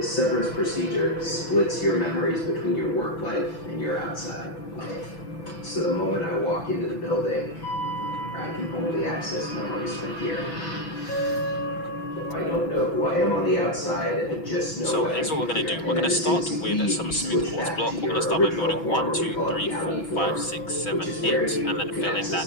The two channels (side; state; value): right; late; 6.3 ms